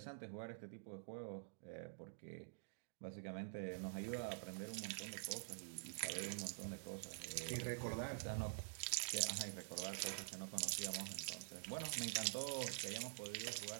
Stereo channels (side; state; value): left; silent; digital silence